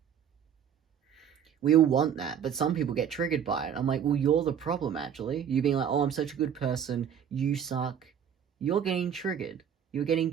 We all want that, but some people get triggered by it. I'm like, well, you're the problem, actually. You being like, oh, I'm such a good person, you suck. You're getting triggered. You're getting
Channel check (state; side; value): quieter; left; 8.6 dB